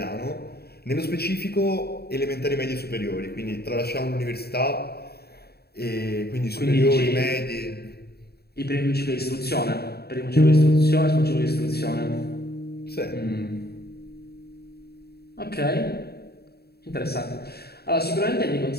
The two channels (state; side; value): late; right; 0.46 ms